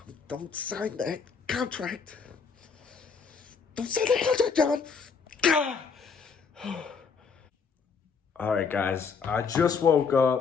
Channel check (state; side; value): quieter; right; 5.6 dB